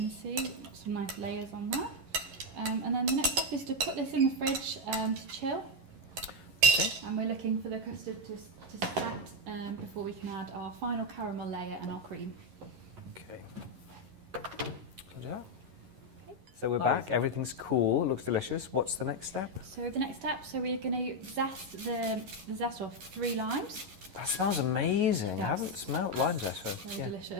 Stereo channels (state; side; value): late; left; 11 ms